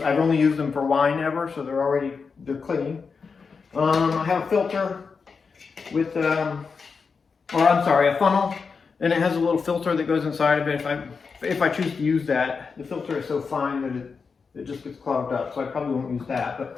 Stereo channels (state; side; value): quieter; right; 5.2 dB